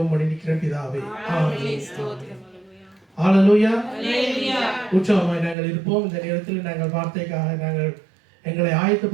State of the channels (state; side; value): drops out; left; at 5.6 s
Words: பண்ணி நிற்கிறேன் பிதாவே. ஆமென். ஹல்லேலூயா. உற்சாகமாய் நாங்கள் இருப்போம். இந்த நேரத்தில் நாங்கள் வார்த்தைக்காக நாங்கள் எங்களை